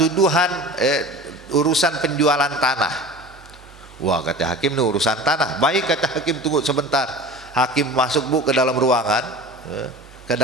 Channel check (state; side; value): normal; both; correlation 0.37